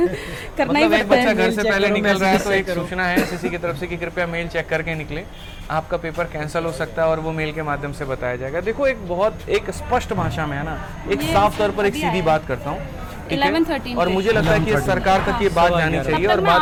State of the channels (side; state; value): both; identical; correlation 1.00